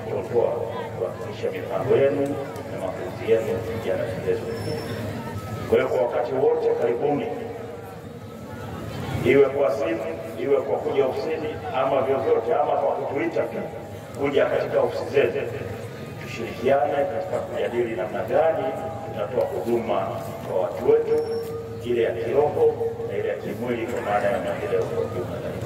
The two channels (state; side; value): identical; both; correlation 1.00